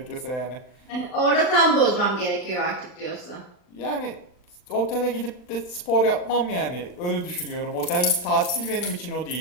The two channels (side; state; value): right; late; 39 ms